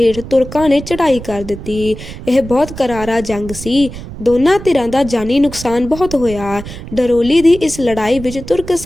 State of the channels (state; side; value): noise; right; rumble, 12 dB below the sound